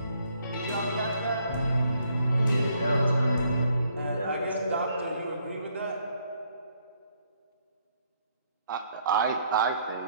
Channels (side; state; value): both; inverted; correlation -0.69